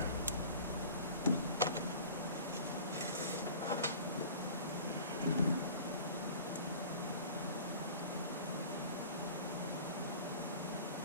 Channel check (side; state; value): both; inverted; correlation -0.42